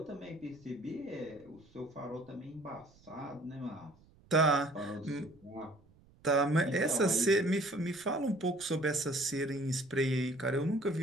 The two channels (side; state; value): right; noise; rumble, 28 dB below the sound